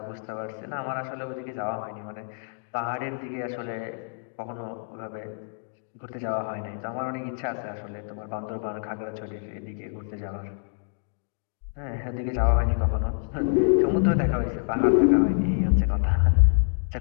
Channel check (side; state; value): right; silent; digital silence